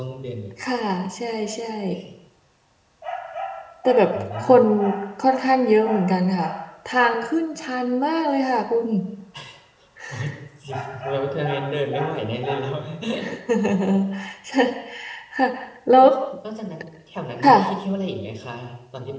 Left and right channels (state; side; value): identical; both; correlation 1.00